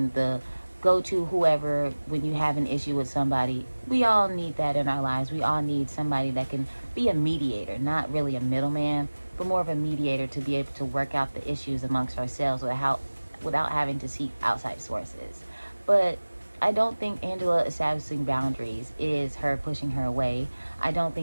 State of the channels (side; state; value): both; inverted; correlation -1.00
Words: the go-to whoever when you have an issue with somebody. We all need that in our lives. We all need somebody that can be a mediator, not really a middleman, but more of a mediator to be able to work out the issues amongst ourselves without having to seek outside sources. But I don't think Angela establishing boundaries is her pushing her away. I don't